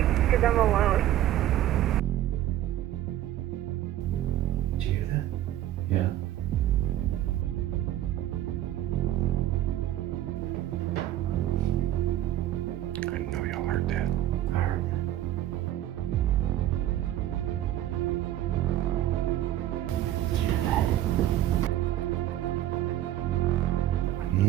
because I'm alone. Did you hear that? Yeah. I know y'all heard that. I heard that. Did you hear that? I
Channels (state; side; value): quieter; left; 13.2 dB